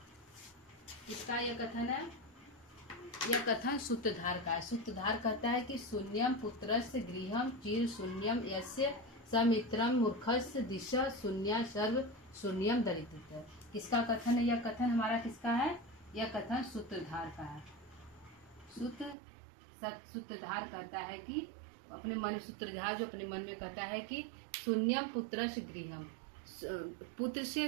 किसका यह कथन है? यह कथन सूत्रधार का है। सूत्रधार कहता है कि शून्यम पुत्रस्य गृहम चिर शून्यम यस्य समित्रम मूर्खस्य दिशा शून्या सर्व शून्यम दरिद्र। किसका कथन है? यह कथन हमारा किसका है? यह कथन सूत्रधार का है। सूत्रधार कहता है कि सूत्रधार जो अपने मन में कहता है कि शून्यम पुत्रस्य गृहम, पुत्र से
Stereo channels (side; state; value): left; drops out; at 19.2 s